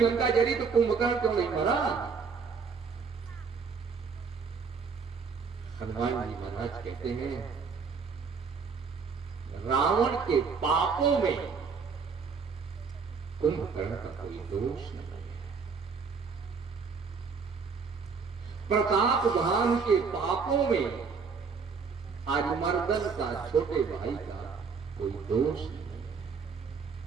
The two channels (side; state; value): left; quieter; 5.4 dB